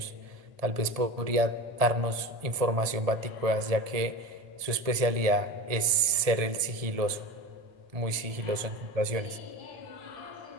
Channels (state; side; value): late; left; 1.7 ms